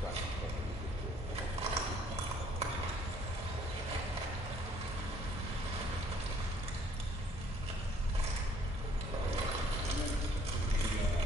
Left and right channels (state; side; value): normal; both; correlation 0.61